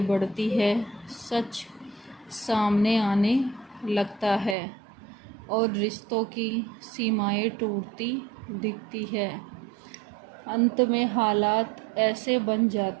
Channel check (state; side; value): drops out; left; at 4.5 s